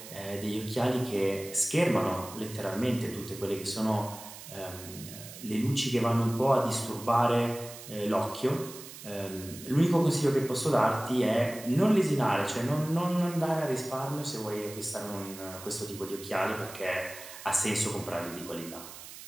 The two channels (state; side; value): noise; right; hiss, 14 dB below the sound